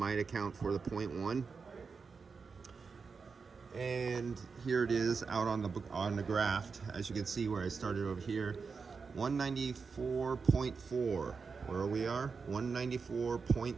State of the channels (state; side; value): quieter; left; 5.1 dB